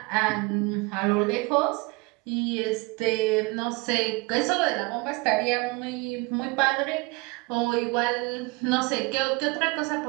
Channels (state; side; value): quieter; left; 26.5 dB